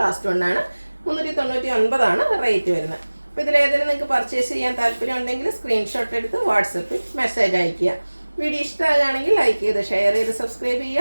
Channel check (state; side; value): inverted; both; correlation -1.00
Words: ലാസ്റ്റ് വണ്ണാണ്. 399 ആണ് റേറ്റ് വരുന്നത്. അപ്പോൾ ഇതിലേതെങ്കിലും നിങ്ങൾക്ക് പർച്ചേസ് ചെയ്യാൻ താല്പര്യം ഉണ്ടെങ്കിൽ സ്ക്രീൻഷോട്ട് എടുത്ത് വാട്സപ്പിൽ മെസ്സേജ് അയയ്ക്കുക. വീഡിയോ ഇഷ്ടമാകുകയാണെങ്കിൽ ലൈക്ക് ചെയ്ത് ഷെയർ ചെയ്ത് സബ്സ്ക്രൈബ്